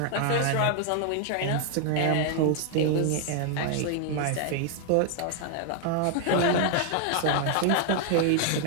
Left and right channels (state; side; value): different; both; correlation 0.00